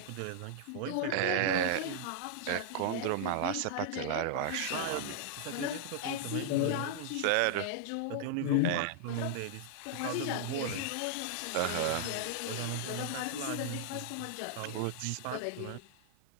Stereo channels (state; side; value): different; both; correlation -0.01